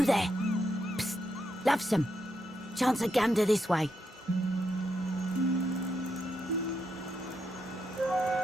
there? Psst, lovesome. Chance a gander this way.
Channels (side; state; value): both; normal; correlation 0.82